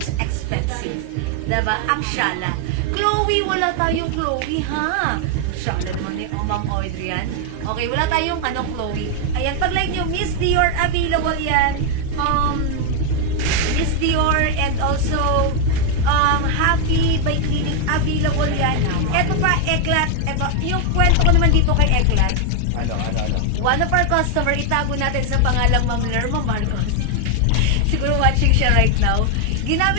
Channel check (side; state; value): both; different; correlation 0.01